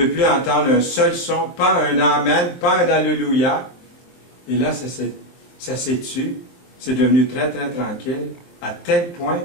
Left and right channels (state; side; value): late; right; 23 ms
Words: veux plus entendre un seul son, pas un Amen, pas un Alléluia. Et là, ça s'est tu. C'est devenu très, très tranquille, à tel point,